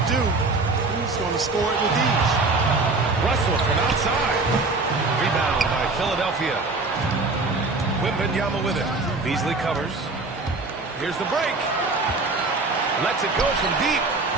do, he's going to score it with ease. Russell from outside. Rebound by Philadelphia. Wembanyama with it. Beasley covers. Here's the break. Lets it go from deep.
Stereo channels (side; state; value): left; quieter; 3.5 dB